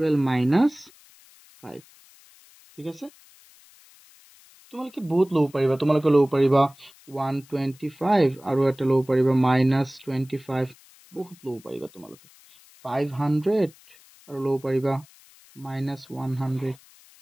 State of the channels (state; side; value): noise; left; hiss, 26 dB below the sound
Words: minus 5 ঠিক আছে তোমালোকে বহুত লব পাৰিবা তোমালোকে লব পাৰিবা 125 আৰু এটা লব পাৰিবা minus 25 বহুত লব পাৰিবা তোমালোকে 500 আৰু লব পাৰিবা minus 100